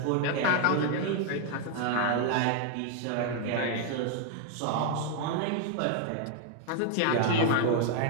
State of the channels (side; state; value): both; different; correlation 0.00